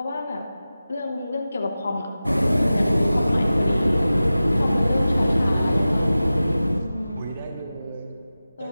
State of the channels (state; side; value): inverted; both; correlation -0.95